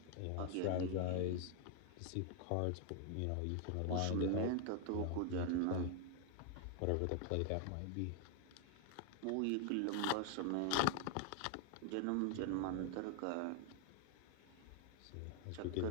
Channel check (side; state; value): both; different; correlation 0.00